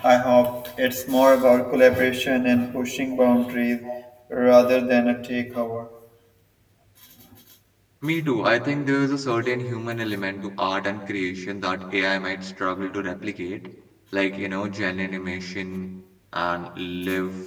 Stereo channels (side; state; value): both; identical; correlation 1.00